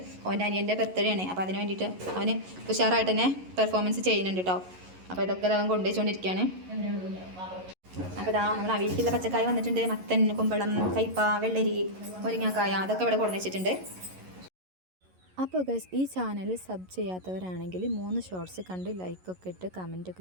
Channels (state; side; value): late; left; 11 ms